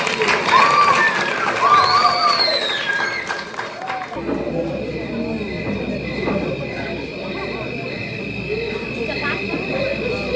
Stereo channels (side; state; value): both; identical; correlation 1.00